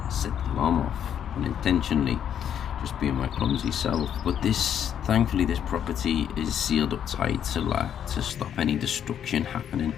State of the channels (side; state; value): right; quieter; 9.2 dB